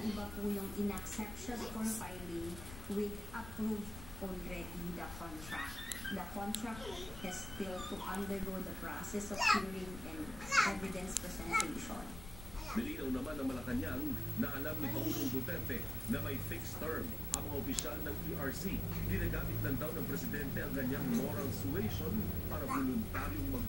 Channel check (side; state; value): left; noise; rumble, 12 dB below the sound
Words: po yung in-accept siya for filing with approved already the contract. The contract has still to undergo the process of hearing and evidence presentation. Nilinaw naman ng Malacanang na alam ni Pangulong Duterte na may fixed term ang mga opisyal ng ERC. Ginagamit lang daw ng Presidente ang kanyang moral suasion para voluntaryong